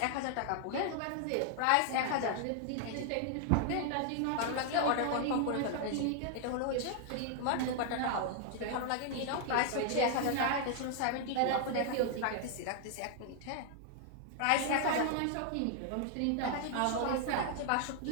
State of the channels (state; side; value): different; both; correlation 0.00